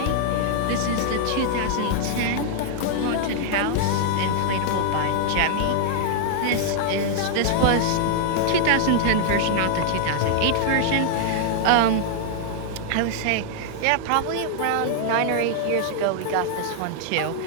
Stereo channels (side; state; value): both; different; correlation -0.01